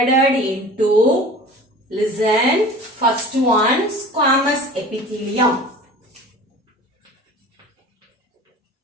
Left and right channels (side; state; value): both; normal; correlation 0.40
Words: into, listen, first one, squamous epithelium.